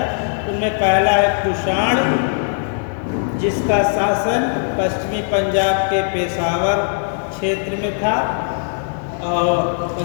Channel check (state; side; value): silent; right; digital silence